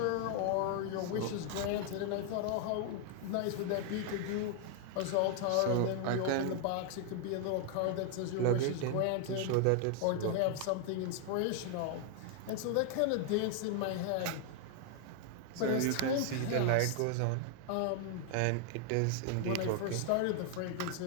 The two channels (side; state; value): both; different; correlation 0.00